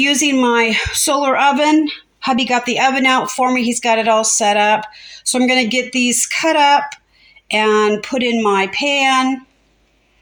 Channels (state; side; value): identical; both; correlation 1.00